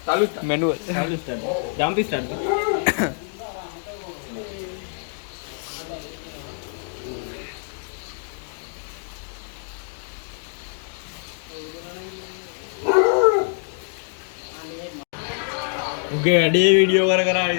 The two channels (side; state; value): right; silent; 59 dB below the other